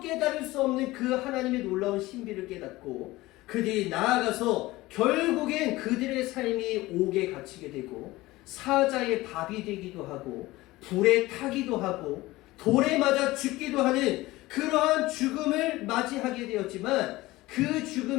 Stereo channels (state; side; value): quieter; right; 19.0 dB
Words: 수 없는 그 하나님의 놀라운 신비를 깨닫고 그들이 나아가서 결국엔 그들의 삶이 옥에 갇히게 되고 사자의 밥이 되기도 하고 불에 타기도 하고 돌에 맞아 죽기도 하는 그러한 죽음을 맞이하게 되었지만 그